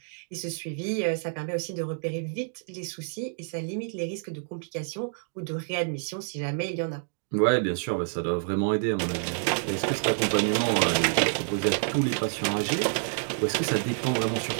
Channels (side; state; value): left; silent; digital silence